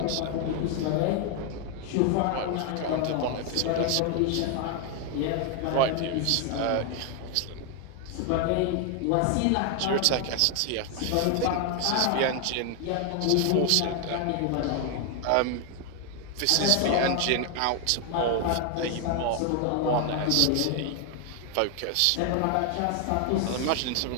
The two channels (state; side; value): different; both; correlation 0.01